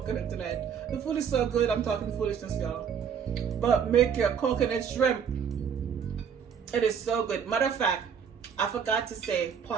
tonight. The food is so good, I'm talking foolishness, y'all. But make your coconut shrimp. It is so good. Matter of fact, I forgot to say,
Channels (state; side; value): quieter; left; 7.3 dB